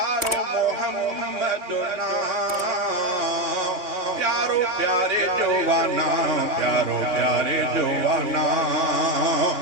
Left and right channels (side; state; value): left; late; 3.2 ms